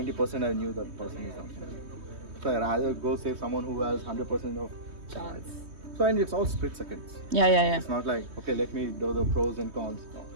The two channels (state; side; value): late; left; 3.2 ms